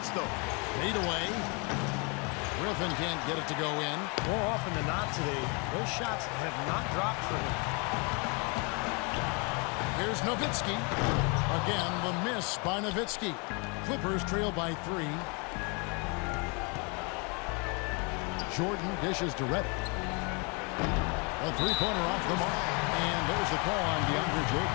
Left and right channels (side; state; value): right; quieter; 32.6 dB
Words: though. Fade away. Griffin can't get it to go in. More often than not today, those shots have not dropped for him. Here's Nowitzki. Again, the miss by Nowitzki. Clippers trail by 3. Jordan dishes to Reddick. A three-pointer off the mark. And there's the call on DeAndre